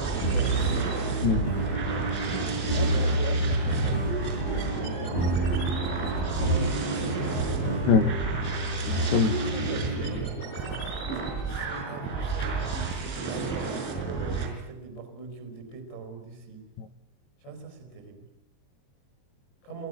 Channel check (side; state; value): right; late; 22 ms